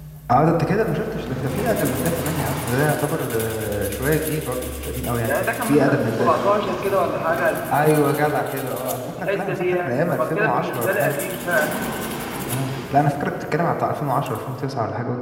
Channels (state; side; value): identical; both; correlation 1.00